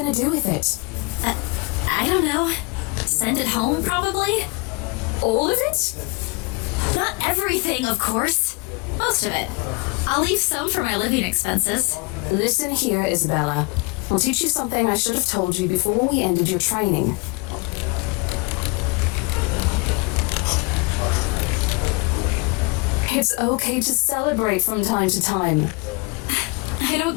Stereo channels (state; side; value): quieter; right; 28.5 dB